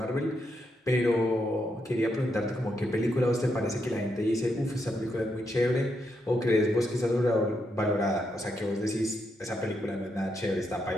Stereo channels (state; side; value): normal; both; correlation 0.81